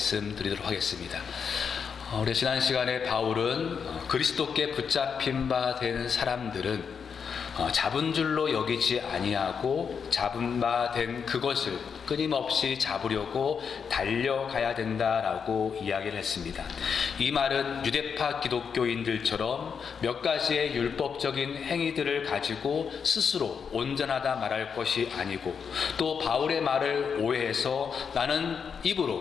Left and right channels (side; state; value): right; quieter; 6.5 dB